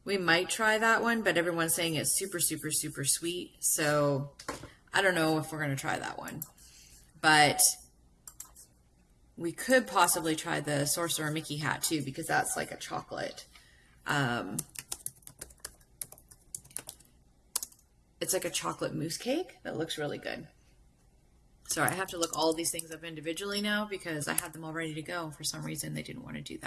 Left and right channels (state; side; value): identical; both; correlation 1.00